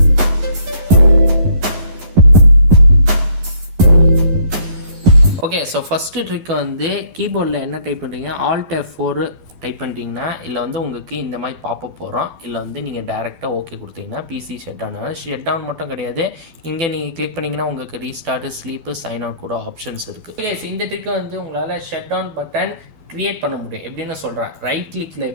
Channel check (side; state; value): left; late; 11 ms